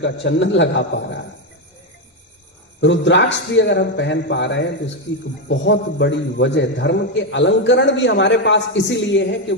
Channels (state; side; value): normal; both; correlation 0.07